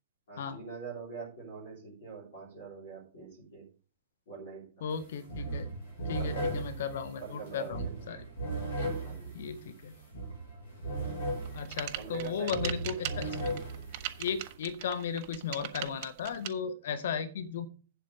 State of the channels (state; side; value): inverted; both; correlation -0.47